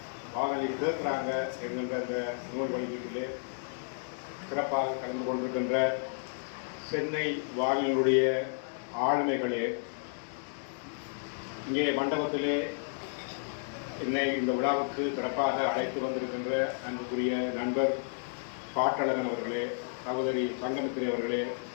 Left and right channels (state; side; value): silent; right; digital silence